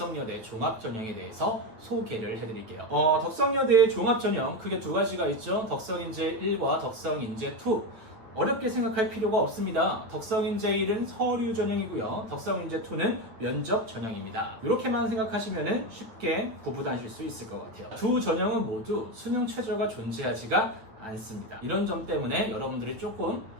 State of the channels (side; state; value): left; late; 9.1 ms